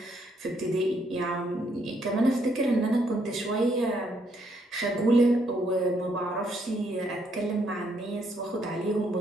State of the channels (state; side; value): normal; both; correlation 0.72